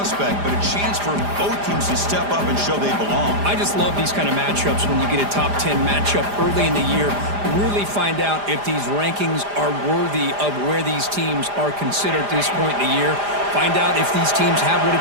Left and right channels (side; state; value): left; late; 5.0 ms